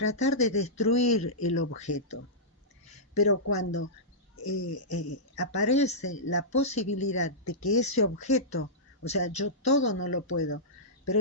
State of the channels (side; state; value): both; normal; correlation -0.15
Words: de destruir el objeto. Pero cuando aparece la posibilidad de que ese objeto, o sea, yo todo no lo puedo, pero